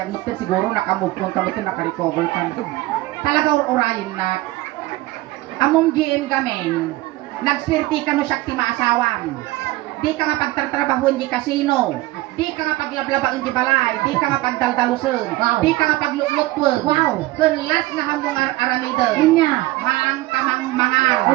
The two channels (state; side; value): quieter; left; 18.7 dB